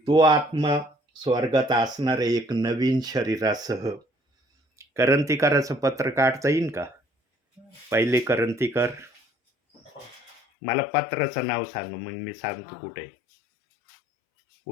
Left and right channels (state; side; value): drops out; right; at 10.4 s